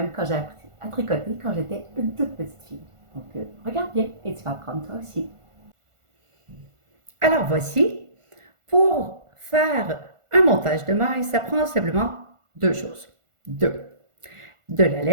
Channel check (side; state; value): left; late; 1.4 ms